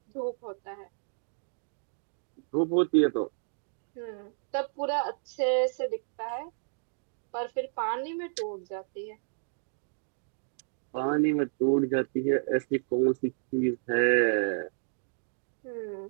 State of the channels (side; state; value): left; silent; digital silence